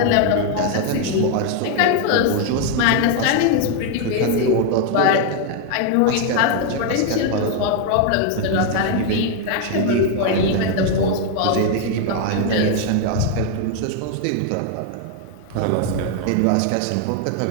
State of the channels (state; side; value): different; both; correlation 0.01